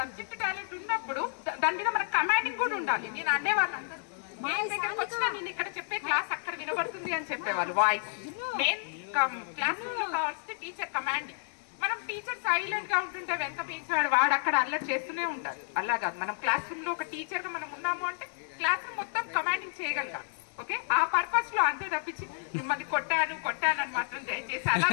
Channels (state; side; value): silent; right; digital silence